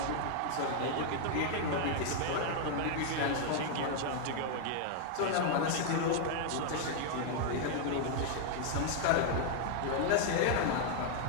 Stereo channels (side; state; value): both; different; correlation 0.00